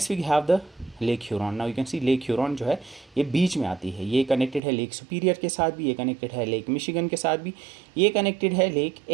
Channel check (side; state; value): left; drops out; at 4.6 s